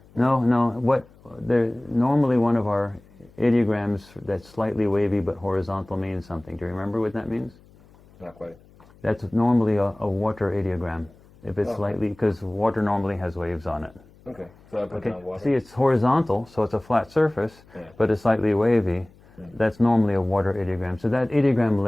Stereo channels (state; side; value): noise; left; hum, 27 dB below the sound